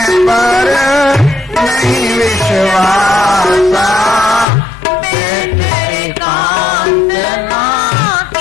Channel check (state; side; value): drops out; right; at 4.5 s